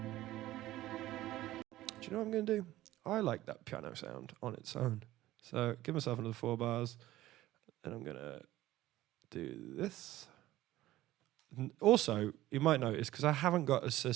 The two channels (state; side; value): quieter; left; 15.6 dB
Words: you know what I'm going to do? I like that piano sound on its own. So give myself another 4 bars, and I'm going to do this. Also, you might notice, because I haven't got a